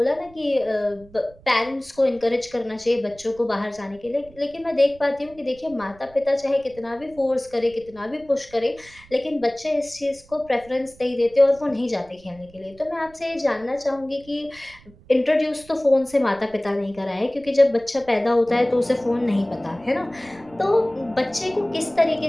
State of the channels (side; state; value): right; noise; rumble, 24 dB below the sound